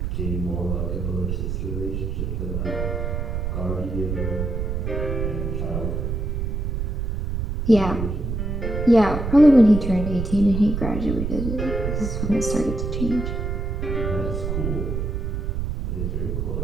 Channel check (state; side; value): noise; right; rumble, 2 dB below the sound